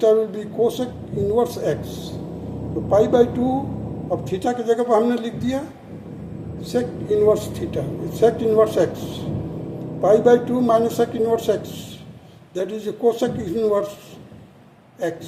will be cosec inverse X. तो pi by 2 अब theta की जगह पर हमने लिख दिया sec inverse theta, sec inverse X. Pi by 2 minus sec inverse X, that is cosec inverse X.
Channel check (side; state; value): both; identical; correlation 1.00